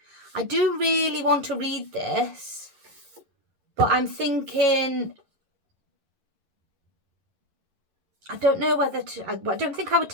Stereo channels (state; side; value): late; left; 11 ms